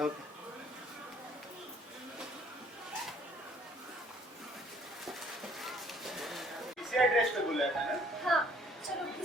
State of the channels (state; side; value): normal; both; correlation 0.60